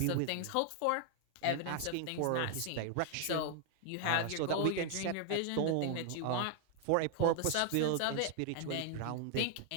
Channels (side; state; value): both; different; correlation 0.00